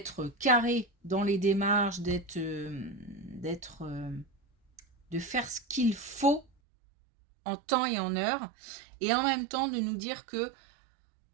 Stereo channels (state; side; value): drops out; left; at 6.5 s